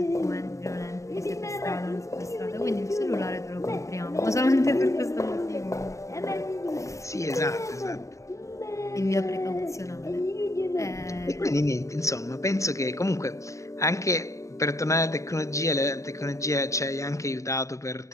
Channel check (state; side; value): late; right; 0.15 ms